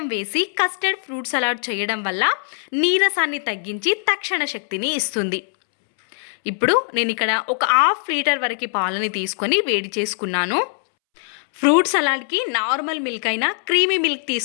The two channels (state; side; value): silent; right; 65 dB below the other